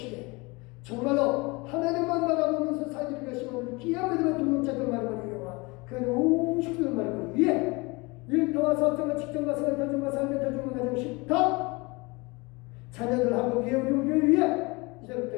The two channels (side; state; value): right; quieter; 25.8 dB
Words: 정말로 하나님만 바라보면서 살기를 결심하는 귀한 믿음의 동역자들 말을 이용하 그 온 식구들 말을 위해 일터와 사업장과 직장과 생활, 가정과 삶의 가정과 가정 식탁 자녀들하고 위에 우리 교회 위에